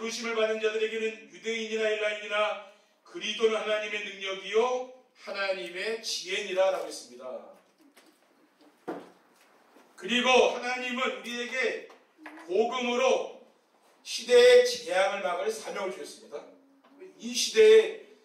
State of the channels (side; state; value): both; identical; correlation 1.00